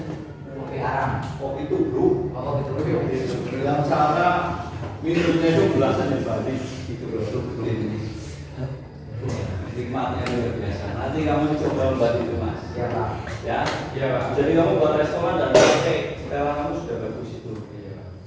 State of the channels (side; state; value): both; identical; correlation 1.00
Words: Kopi arang. Kopi tubruk. Oh, kopi tubruk. Yang cara minumnya itu belasan yang balik gitu loh. Ini nikmatnya luar biasa. Nanti kamu coba membuat itu mas. Iya Pak. Ya. Iya pak. Jadi kamu buat restoran dan kafe, sekarang kamu sudah bagus itu.